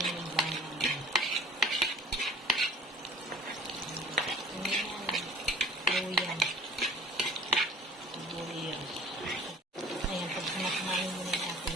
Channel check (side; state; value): both; normal; correlation 0.48